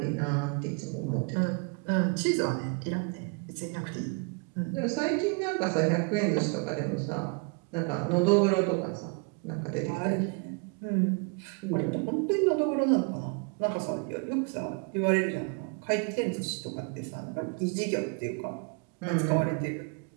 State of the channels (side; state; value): left; quieter; 33.8 dB